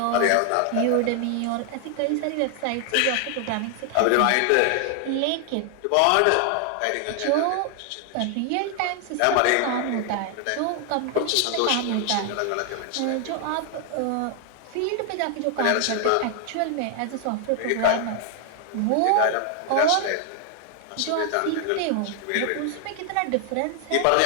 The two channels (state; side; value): different; both; correlation 0.00